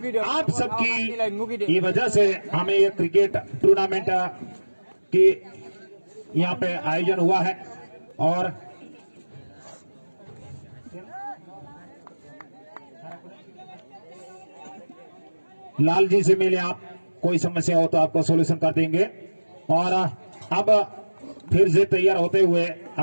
आप सबकी ये वजह से हमें ये क्रिकेट टूर्नामेंट की यहाँ पे आयोजन हुआ है। और लाल जी से मिले आप, कोई समस्या हो तो आपको सॉल्यूशन कर देंगे। और अब फिर से तैयार होते हुए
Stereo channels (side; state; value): both; inverted; correlation -1.00